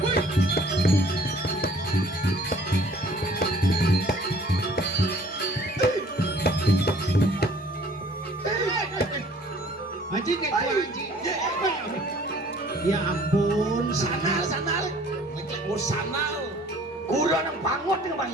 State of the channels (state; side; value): normal; both; correlation 0.54